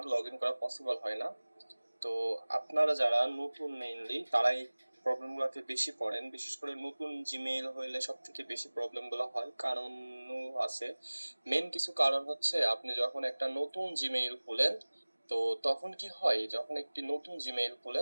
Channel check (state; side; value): inverted; both; correlation -1.00